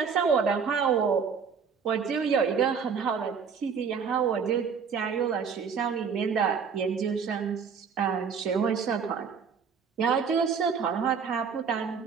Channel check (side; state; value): left; quieter; 6.3 dB